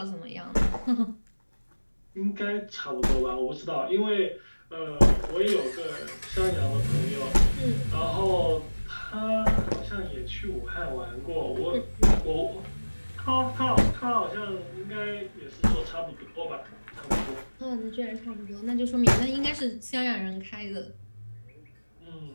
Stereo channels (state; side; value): inverted; both; correlation -1.00